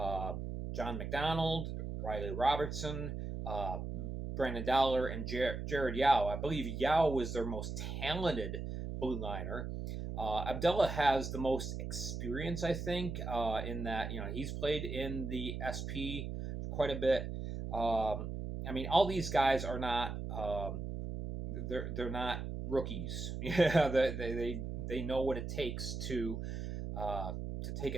John McDonald, Riley Robertson, Brandon Dollar, and Jared Yao. I believe Yao was their most talented blue liner. Abdullah has the most experience, I think, in that he's played in the SP quite a bit. I mean, all these guys are not they're not rookies. Yeah, they know what it takes to take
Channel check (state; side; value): noise; right; hum, 5 dB below the sound